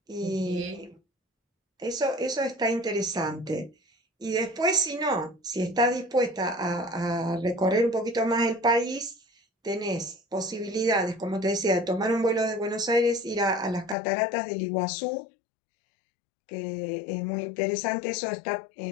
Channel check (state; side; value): drops out; right; at 14.0 s